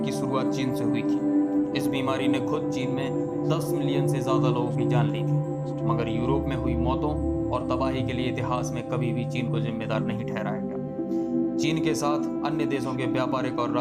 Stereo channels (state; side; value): identical; both; correlation 1.00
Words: की शुरुआत चीन से हुई थी। इस बीमारी ने खुद चीन में 10 मिलियन से ज़्यादा लोगों की जान ली थी, मगर यूरोप में हुई मौतों और तबाही के लिए इतिहास में कभी भी चीन को जिम्मेदार नहीं ठहराया गया। चीन के साथ अन्य देशों के व्यापारिक और